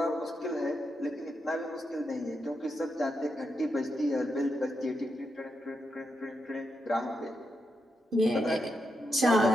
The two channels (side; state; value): both; normal; correlation 0.84